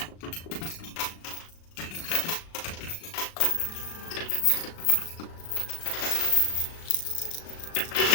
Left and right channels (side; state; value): right; late; 37 ms